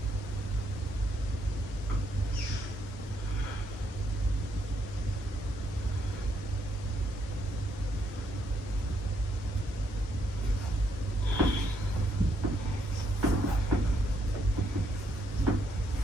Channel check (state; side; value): normal; both; correlation 0.75